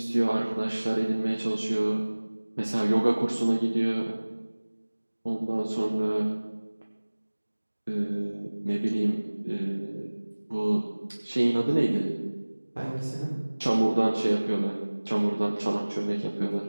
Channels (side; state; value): both; inverted; correlation -1.00